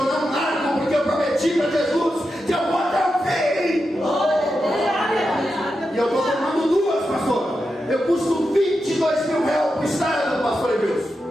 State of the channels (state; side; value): normal; both; correlation 0.88